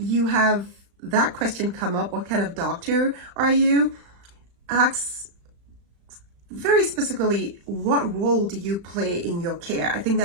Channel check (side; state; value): left; late; 35 ms